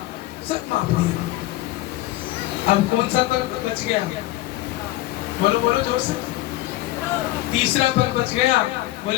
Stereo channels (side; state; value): right; quieter; 16.9 dB